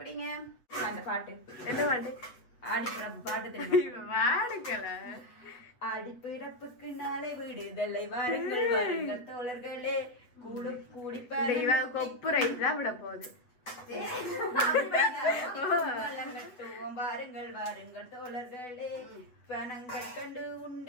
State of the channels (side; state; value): right; late; 8.1 ms